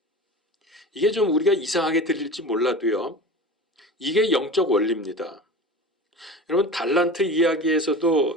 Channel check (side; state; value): both; normal; correlation 0.33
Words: 이게 좀 우리가 이상하게 들릴지 몰라도요, 이게 영적 원리입니다. 여러분, 달란트